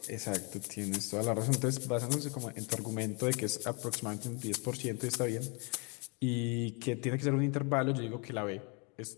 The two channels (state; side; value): quieter; right; 33.1 dB